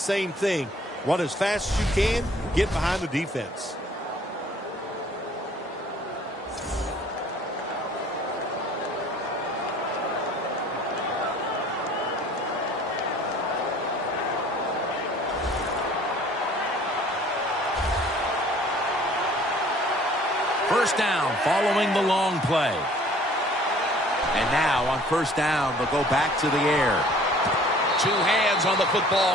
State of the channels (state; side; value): normal; both; correlation 0.53